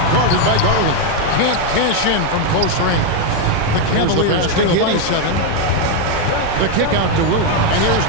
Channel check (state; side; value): different; both; correlation 0.02